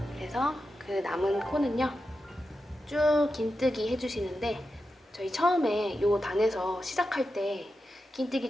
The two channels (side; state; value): both; normal; correlation 0.90